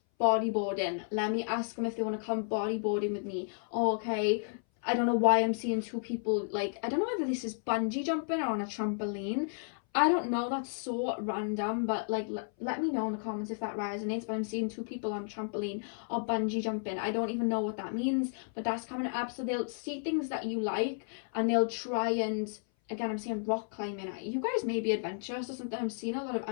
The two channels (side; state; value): right; silent; 56 dB below the other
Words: bodyboarding. Let me ask them if they want to come bodyboarding with me. Oh, okay, I don't know why I'm seeing two people, like, I don't know whether this is bungee jumping or on a trampoline. I don't know, that's so random, but like let me know in the comments if that resonates. But I'm seeing two people on trampoline or bungee jumping. I don't even know what that means, but that's coming up. So they'll see things that you like and they'll try and, again, I'm seeing rock climbing. You guys may be adventurous or something. I'm seeing a lot of